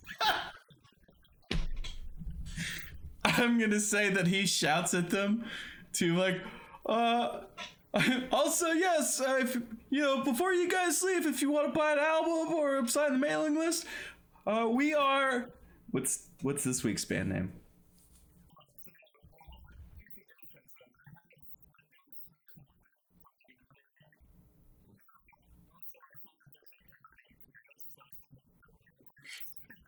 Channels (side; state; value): both; identical; correlation 1.00